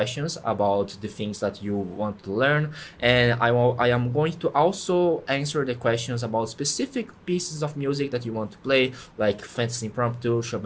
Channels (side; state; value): both; identical; correlation 1.00